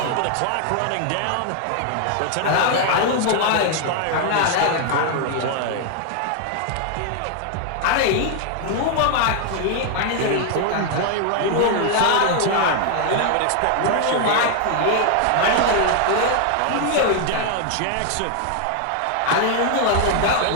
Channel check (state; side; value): different; both; correlation 0.00